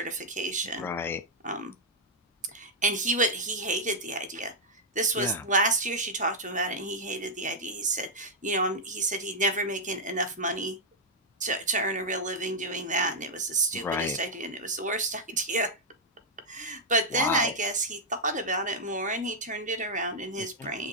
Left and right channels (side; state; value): both; normal; correlation -0.05